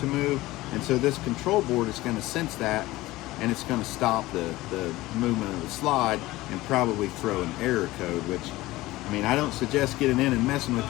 move. And so this control board is going to sense that, and it's going to stop the movement of the slide and probably throw an error code, which, I mean, I don't suggest getting in and messing with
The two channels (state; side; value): quieter; right; 18.3 dB